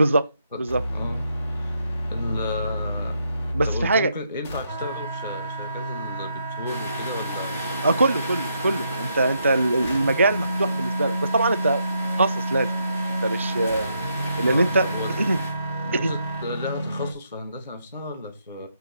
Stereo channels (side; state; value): both; inverted; correlation -0.77